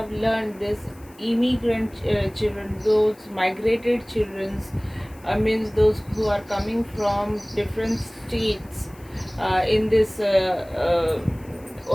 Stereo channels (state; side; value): noise; left; hiss, 27 dB below the sound